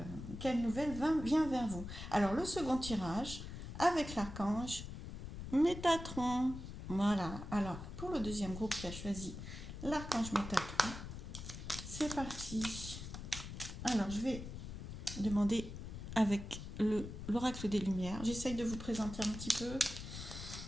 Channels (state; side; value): noise; left; rumble, 9 dB below the sound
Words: nouvelle vient vers vous? Alors le second tirage, avec l'archange Métatron. Voilà, alors pour le deuxième groupe qui a choisi l'archange Métatron, c'est parti. Alors, je vais demander avec l'oracle des Lumières. J'essaye de vous présenter un petit peu